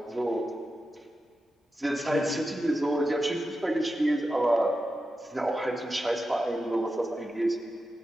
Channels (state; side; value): normal; both; correlation 0.91